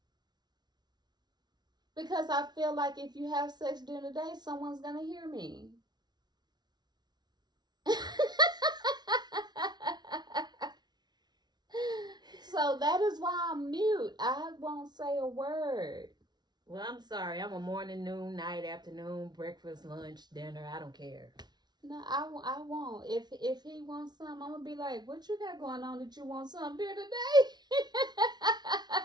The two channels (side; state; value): left; late; 0.20 ms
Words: Because I feel like if you have sex during the day, someone's going to hear me. So that is why I'm mute. I won't say a word. Well, I'm sorry. I'm a morning, noon, night, afternoon, breakfast, lunch, dinner. I don't care. No, I won't. If he wants some, I'm gonna be like, "What you got going on that you want some during the day?"